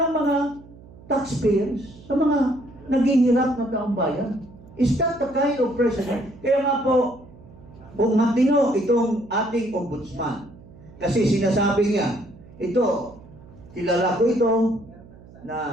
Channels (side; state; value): right; noise; hum, 21 dB below the sound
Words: mga taxpayers, sa mga naghihirap na taong bayan? Is that the kind of president? Kaya nga po, kung matino itong ating ombudsman, kasi sinasabi niya, ito, kilala ko ito,